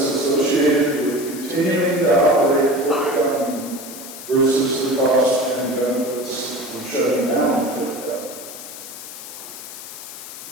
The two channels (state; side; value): noise; left; hiss, 12 dB below the sound